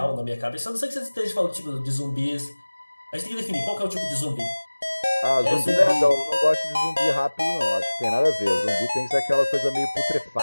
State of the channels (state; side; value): inverted; both; correlation -1.00